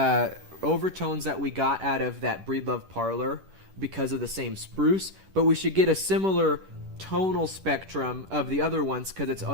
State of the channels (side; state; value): left; late; 10 ms